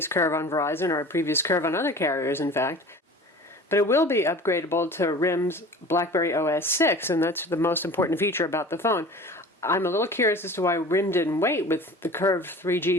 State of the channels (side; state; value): both; normal; correlation 0.41